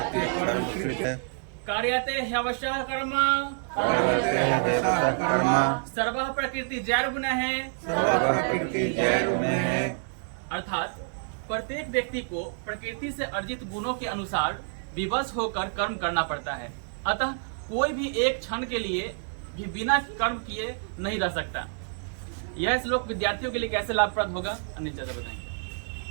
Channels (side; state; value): left; silent; digital silence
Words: कार्यते ह्यवशः कर्म सर्वः प्रकृति जैर्गुणः। अर्थात प्रत्येक व्यक्ति को प्रकृति से अर्जित गुणों के अनुसार विवश होकर कर्म करना पड़ता है। अतः कोई भी एक क्षण के लिए भी बिना कर्म किए नहीं रह सकता। यह श्लोक विद्यार्थियों के लिए कैसे लाभप्रद होगा, अनिल चाचा